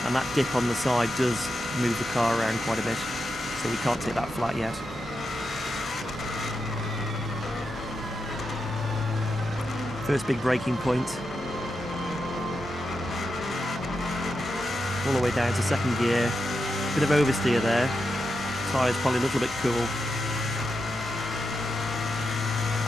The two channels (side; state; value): both; normal; correlation 0.87